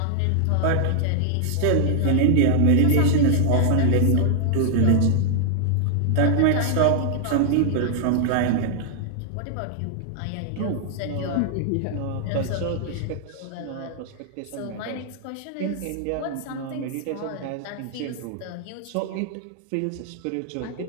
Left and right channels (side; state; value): both; different; correlation 0.00